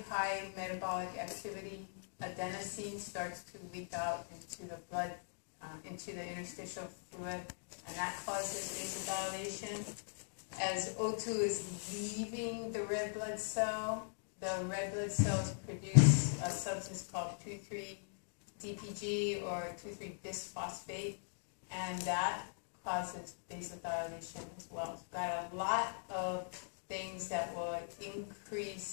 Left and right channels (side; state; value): right; silent; digital silence